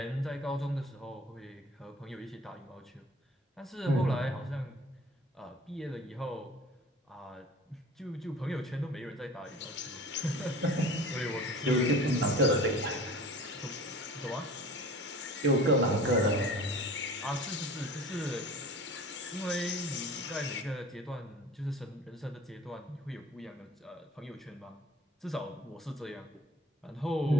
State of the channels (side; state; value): both; normal; correlation 0.43